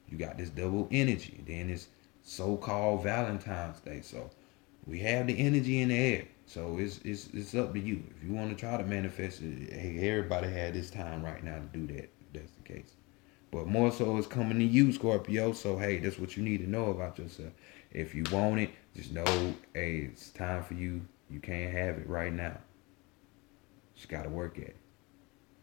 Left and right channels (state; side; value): quieter; right; 26.0 dB